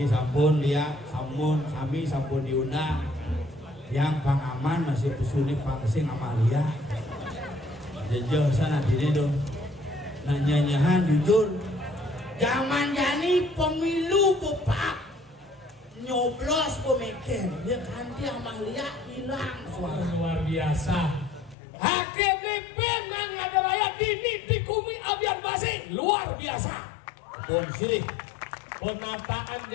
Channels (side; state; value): right; drops out; at 21.6 s